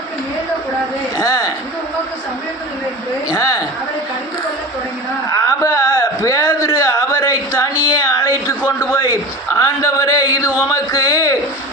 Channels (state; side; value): normal; both; correlation 0.31